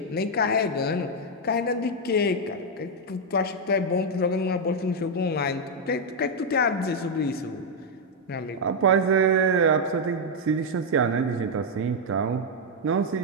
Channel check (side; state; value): both; normal; correlation 0.00